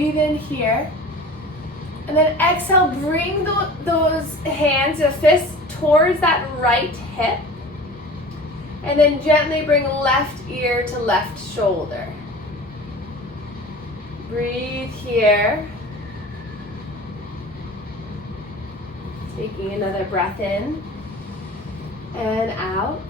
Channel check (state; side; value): normal; both; correlation 0.39